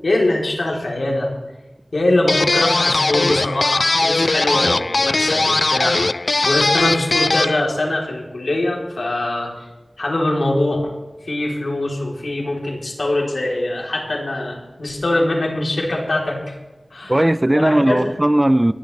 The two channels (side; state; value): both; normal; correlation 0.98